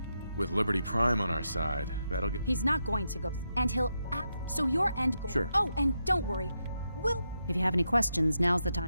With Liberty Prime on our side, that'll get... He's not going to go... And he'll... So your end goal... Sure. Oh, and don't worry. We'll... If you have any questions, now's the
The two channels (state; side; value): inverted; both; correlation -0.84